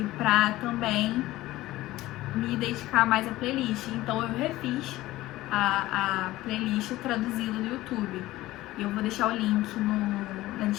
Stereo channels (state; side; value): quieter; right; 17.0 dB